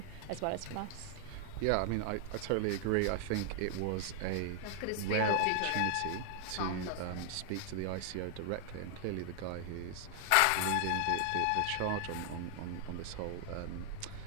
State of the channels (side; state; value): both; different; correlation 0.00